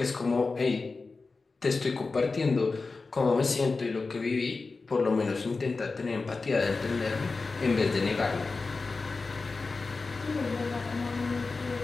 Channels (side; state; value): right; quieter; 4.0 dB